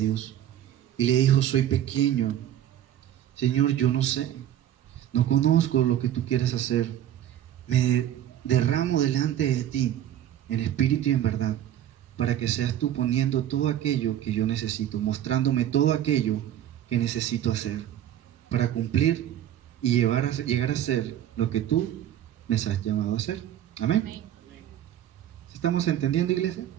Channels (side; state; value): left; quieter; 11.4 dB